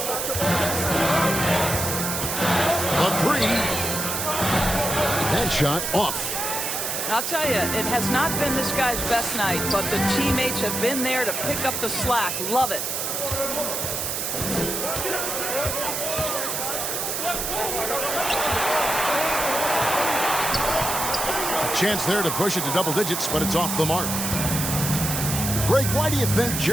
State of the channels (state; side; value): noise; right; hiss, 2 dB below the sound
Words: A 3. That shot off. I'll tell you, it has not been this guy's best night, but the teammates have been there to pick up the slack. Love it. A chance there to push it to double digits, but it's off the mark. Greg, why do you think